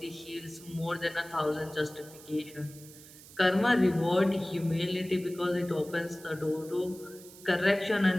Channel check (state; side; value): noise; right; hiss, 19 dB below the sound